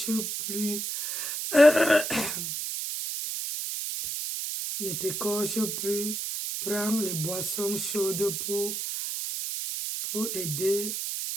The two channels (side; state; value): right; noise; hiss, 3 dB below the sound